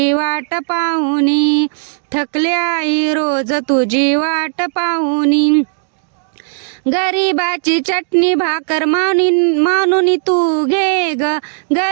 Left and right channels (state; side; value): silent; left; digital silence